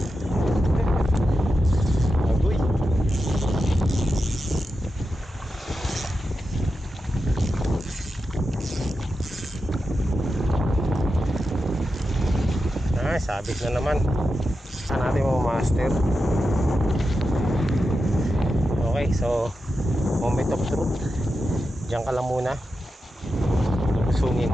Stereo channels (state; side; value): normal; both; correlation 0.89